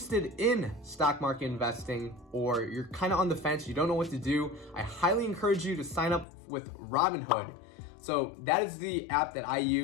in stock market investing, or you're kind of on the fence, you don't know what to do, I highly encourage you to sign up with Robinhood. So that is the app that I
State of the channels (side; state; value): right; drops out; at 6.2 s